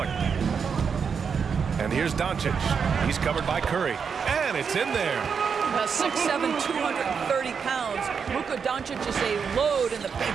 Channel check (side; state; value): left; quieter; 6.3 dB